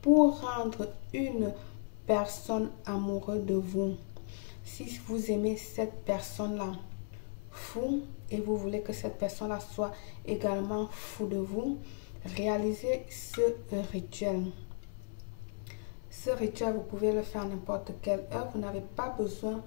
pour rendre une personne amoureuse de vous. Si vous aimez cette personne-là fou et vous voulez que cette personne-là soit également fou de vous, réalisez ce rituel. Ce rituel, vous pouvez le faire à n'importe quelle heure. Vous n'avez pas besoin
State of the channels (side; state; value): right; silent; 54 dB below the other